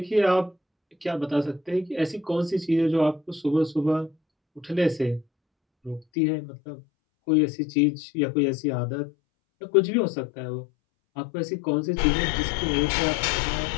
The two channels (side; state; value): right; drops out; at 6.1 s